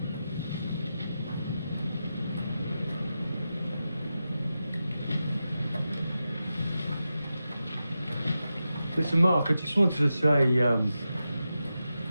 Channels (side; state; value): both; inverted; correlation -0.91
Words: Listen, Mark, I just wanted to say,